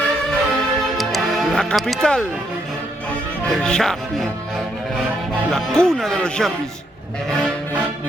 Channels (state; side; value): normal; both; correlation 0.75